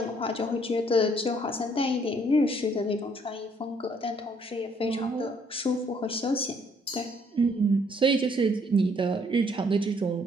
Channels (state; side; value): normal; both; correlation 0.66